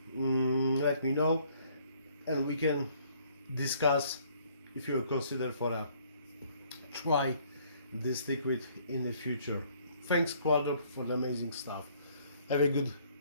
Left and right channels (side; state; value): both; inverted; correlation -0.62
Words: know, and we can discuss if you consider for a try this liquid in the future. Thanks Qualdrop for the amazing stuff. Have a good